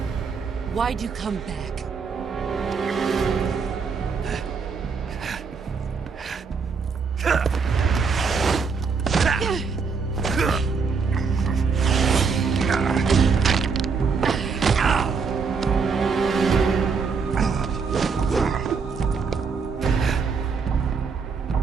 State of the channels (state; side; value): quieter; left; 5.3 dB